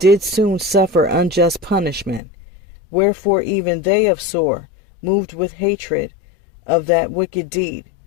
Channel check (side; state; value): right; drops out; at 2.2 s